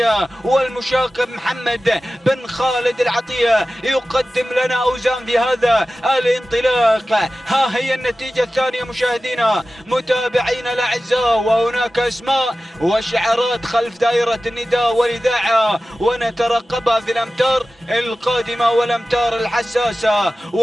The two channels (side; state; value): both; normal; correlation 0.95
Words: والمشاقب محمد بن خالد العطية يقدم لنا أوزان في هذا الانطلاق. ها هي النتيجة الثانية مشاهدينا متابعينا الأعزاء، وهناك أسماء وشعارات خلف دائرة النداء والإذاعة ونترقبها في الأمتار القادمة والأمتار الحساسة،